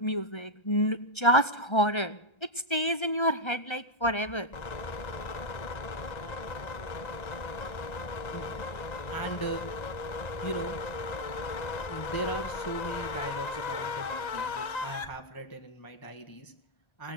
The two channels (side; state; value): right; late; 1.3 ms